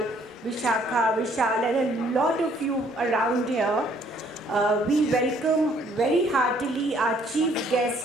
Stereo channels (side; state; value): both; normal; correlation 0.63